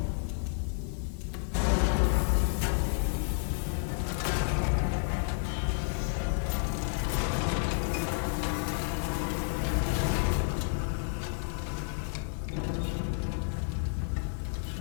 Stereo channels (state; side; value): silent; right; 57 dB below the other